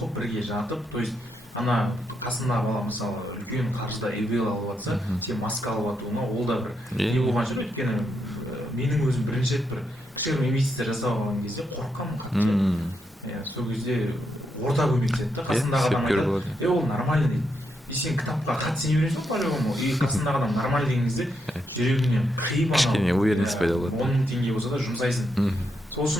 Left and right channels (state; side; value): normal; both; correlation 0.81